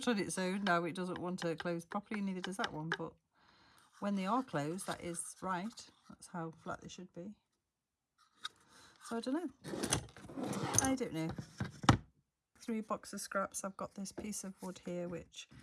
on its own. Now it doesn't want to close properly, neither does that one. But when they are closed, that is right. That's how flat they should be. So I don't know. I don't know. 3 boxes of scraps. I've got this piece of wood here, which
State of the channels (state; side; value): identical; both; correlation 1.00